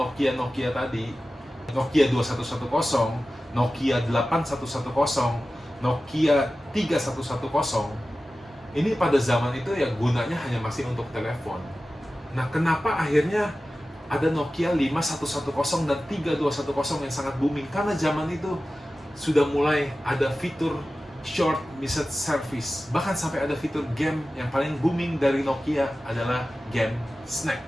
tadi, Nokia 2110, Nokia 8110, Nokia 3110, ini pada zaman itu ya gunanya hanya masih untuk telepon. Nah, kenapa akhirnya ada Nokia 5110 dan 3210 yang sangat booming? Karena zaman itu sudah mulai ada fitur short message service. Bahkan sampai ada fitur game. Yang paling booming dari Nokia adalah game Snake.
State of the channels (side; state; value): both; normal; correlation 0.95